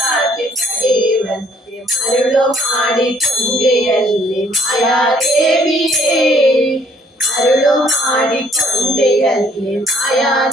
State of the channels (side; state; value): both; normal; correlation 0.63